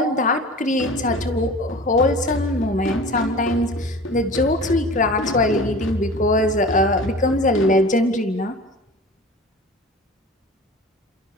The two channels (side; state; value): both; normal; correlation 0.38